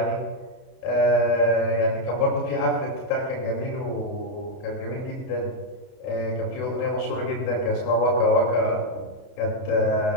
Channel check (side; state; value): right; late; 30 ms